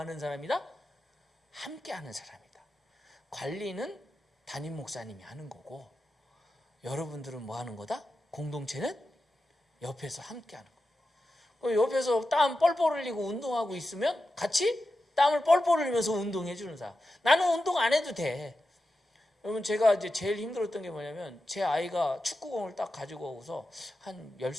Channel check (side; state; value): both; normal; correlation 0.91